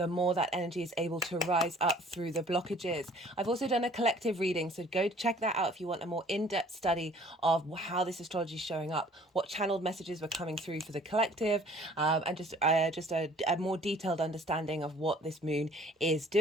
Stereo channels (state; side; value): normal; both; correlation 0.53